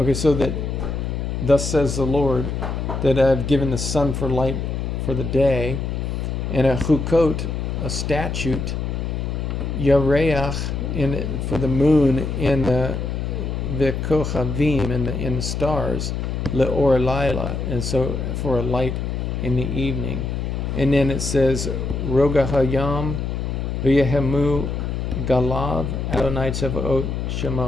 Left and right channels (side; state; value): left; noise; hum, 3 dB below the sound